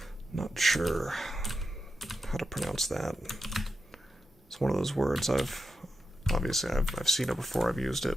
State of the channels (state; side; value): normal; both; correlation 0.88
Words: Not sure how to pronounce that. It's one of those words obviously I've seen it before, I've used